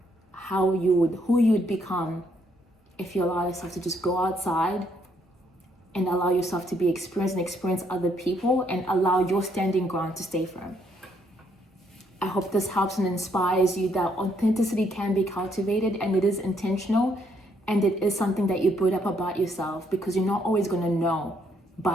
who you'd become if you allow yourself to just go outside and allow yourself to be experienced and experience other people and allow your standing ground to stay firm. I hope this helps and inspires you that authenticity can be cultivated and it is intentional and it is something that you put up about yourself because you're not always going to know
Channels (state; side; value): normal; both; correlation 0.71